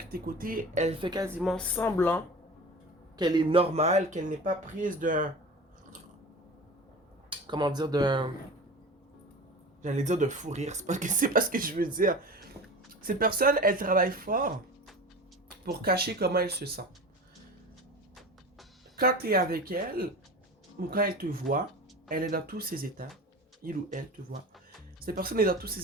côtés, elle fait quasiment semblant qu'elle est normale, qu'elle n'est pas prise d'un... comment dire, d'un... j'allais dire de fou rire, c'est pas ce que je veux dire. Cette personne, elle travaille fort pour cacher comment elle se sent. Quand tu es avec elle, ou quand elle te voit, elle est dans tous ses états. Il ou elle te voit. Cette personne est dans tous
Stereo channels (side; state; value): both; normal; correlation 0.34